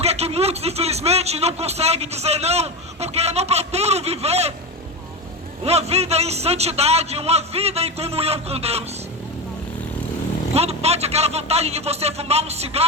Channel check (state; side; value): normal; both; correlation 0.19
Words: que muitos infelizmente não conseguem dizer não, porque não procuram viver uma vida em santidade, uma vida em comunhão com Deus. Quando bate aquela vontade de você fumar um